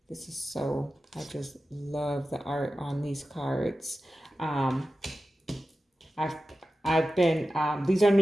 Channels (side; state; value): both; normal; correlation 0.93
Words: This is so, I just love the art on these cards. I've been, these are